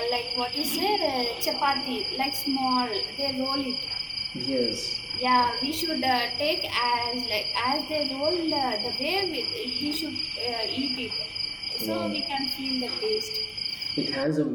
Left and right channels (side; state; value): both; identical; correlation 1.00